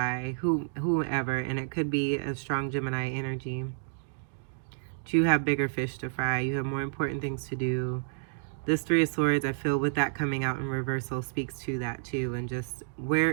whoever, and it could be a strong Gemini energy. But you have bigger fish to fry. You have more important things to do. This Three of Swords, I feel with that coming out in reversal, speaks to that too, and just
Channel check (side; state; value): left; silent; digital silence